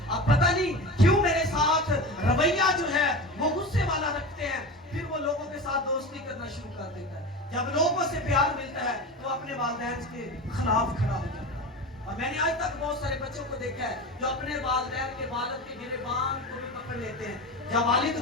अब पता नहीं क्यों मेरे साथ रवैया जो है वो गुस्से वाला रखते हैं। फिर वो लोगों के साथ दोस्ती करना शुरू कर देता है। जब लोगों से प्यार मिलता है तो अपने वालिदैन के खिलाफ खड़ा हो जाता है। اور میں نے آج تک بہت سارے بچوں کو دیکھا ہے جو اپنے والدین کے والد کے گریبان کو بھی پکڑ لیتے ہیں. جب والد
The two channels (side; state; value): both; normal; correlation 0.28